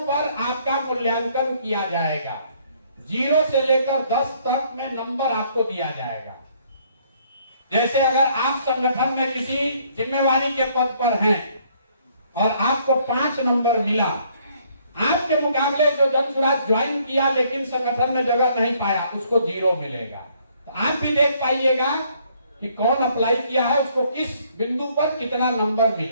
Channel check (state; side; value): inverted; both; correlation -0.65